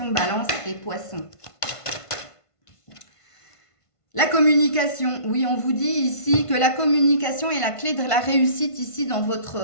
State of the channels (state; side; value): late; right; 1.5 ms